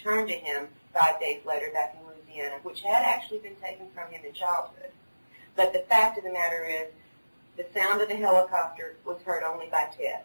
to him 5 days later back in Louisiana, which had actually been taken from him in childhood. But the fact of the matter is, the sound of the helicopter was heard only by Ted.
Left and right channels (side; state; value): both; inverted; correlation -1.00